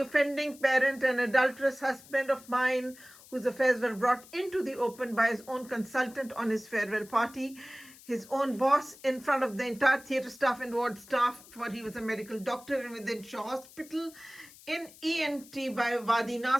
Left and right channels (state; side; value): noise; left; hiss, 21 dB below the sound